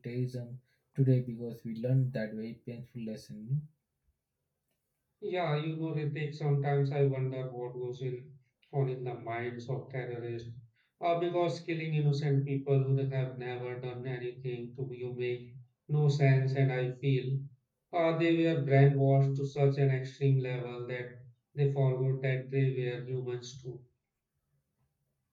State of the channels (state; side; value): identical; both; correlation 1.00